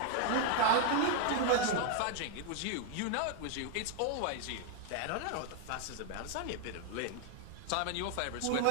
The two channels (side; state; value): both; different; correlation 0.00